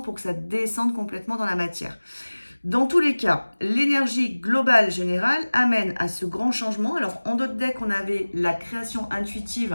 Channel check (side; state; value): both; inverted; correlation -1.00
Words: que ça descende complètement dans la matière. Dans tous les cas, l'énergie globale générale amène à ce grand changement. Alors, en d'autres decks, on avait la création